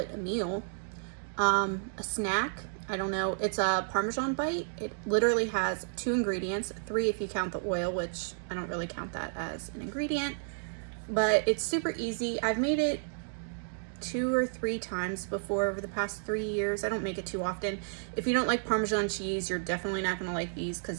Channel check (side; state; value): left; silent; digital silence